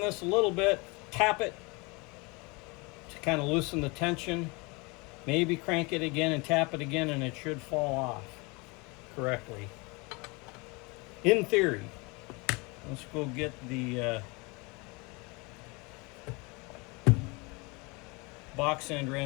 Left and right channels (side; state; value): right; quieter; 27.7 dB